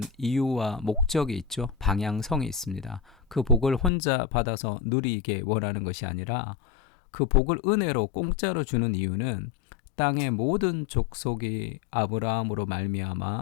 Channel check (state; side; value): drops out; right; at 3.9 s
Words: 이유와 목적이 있죠. 방향성이 있습니다. 그 복을 혼자 받아서 누리게 원하는 것이 아니라, 그 복을 은혜로 공짜로 주는 이유는 땅의 모든 족속이 아브라함으로